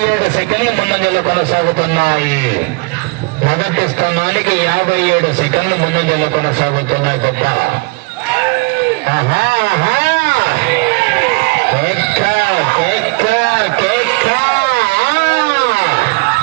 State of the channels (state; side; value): quieter; left; 27.4 dB